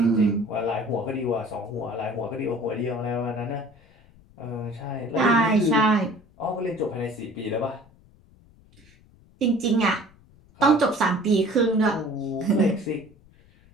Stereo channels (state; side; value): noise; left; rumble, 28 dB below the sound